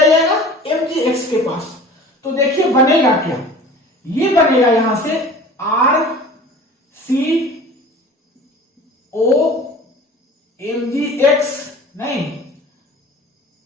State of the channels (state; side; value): normal; both; correlation 0.42